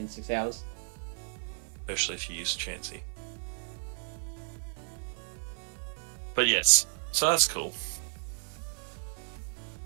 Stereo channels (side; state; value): left; silent; 56 dB below the other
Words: 6 hours. Especially if you use Chansey. But yes, so that's cool.